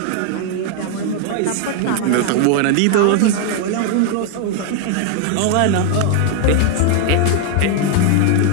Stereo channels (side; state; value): both; different; correlation 0.00